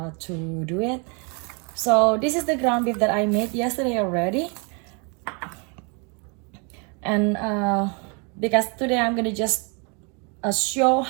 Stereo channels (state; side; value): quieter; left; 34.2 dB